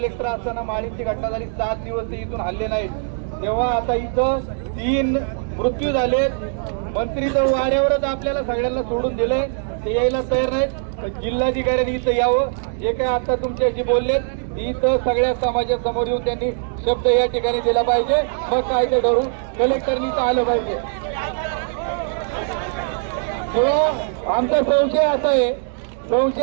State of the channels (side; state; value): left; silent; digital silence